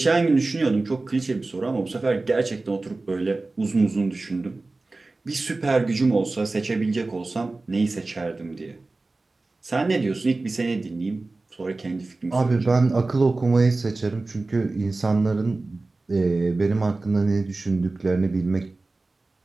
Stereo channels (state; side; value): quieter; left; 3.3 dB